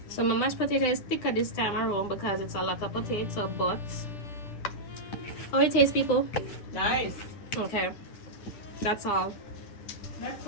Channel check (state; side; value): late; right; 9.9 ms